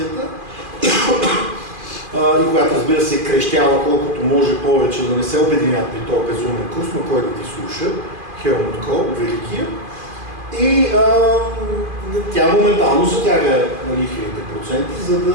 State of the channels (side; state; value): left; late; 2.5 ms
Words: и която, разбира се, крещява колкото може повече да не се обединят при този безумен курс, но кой да ти слуша, Хелмут Кол, великия. И тя моментално затяга лихвените проценти, за